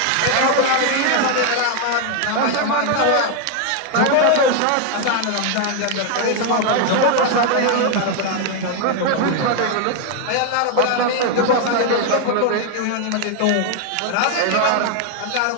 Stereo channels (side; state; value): both; different; correlation 0.01